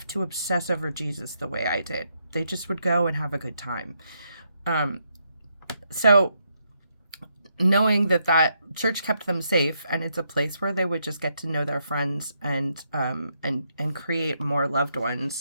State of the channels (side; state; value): both; inverted; correlation -0.78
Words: to obsess over Jesus the way I did. They just would go and have a good time. So knowing that church kept them safe, and it's a place where they would just get to know their friends and create more loved